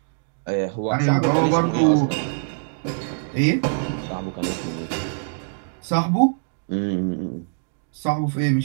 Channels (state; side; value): silent; left; digital silence